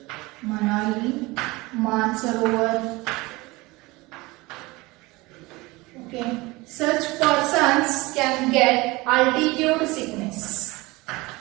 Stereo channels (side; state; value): left; quieter; 22.4 dB